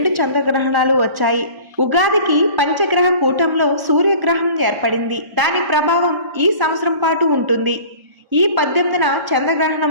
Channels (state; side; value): late; left; 1.1 ms